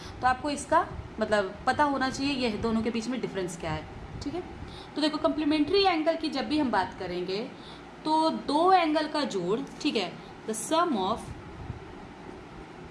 तो आपको इसका मतलब पता होना चाहिए ये दोनों के बीच में डिफरेंस क्या है। ठीक है, तो देखो कम्प्लीमेंट्री एंगल की जब भी हम बात करेंगे तो दो एंगल का जोड़, ठीक है, the sum of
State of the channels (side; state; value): both; identical; correlation 1.00